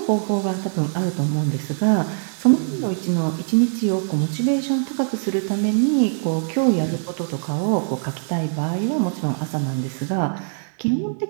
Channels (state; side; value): silent; left; digital silence